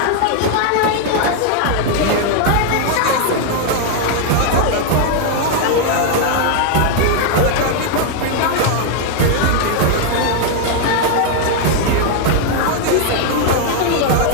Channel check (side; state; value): both; different; correlation 0.00